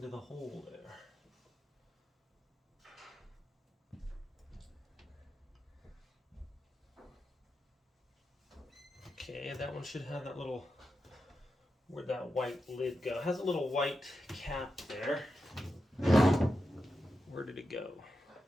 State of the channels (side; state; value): both; normal; correlation 0.89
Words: the hole there. Okay, that one should have that little, where'd that white lid go? It has a little white cap there. Where did it go?